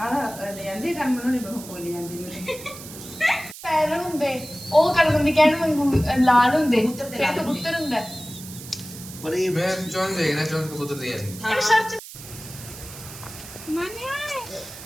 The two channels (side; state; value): right; noise; hiss, 14 dB below the sound